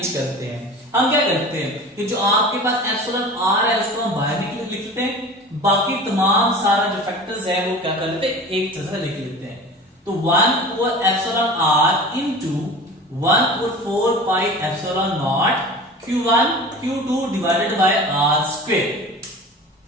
करते हैं। हम क्या करते हैं कि जो आपके पास एप्सिलॉन आर है उसको हम बाहर लिख लेते हैं, बाकी तमाम सारा जो फैक्टर्स है वो क्या करते हैं, एक जगह लिख लेते हैं। तो 1 epsilon r into 1/4 pi epsilon naught Q1 Q2 divided by R square.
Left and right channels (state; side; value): normal; both; correlation 0.37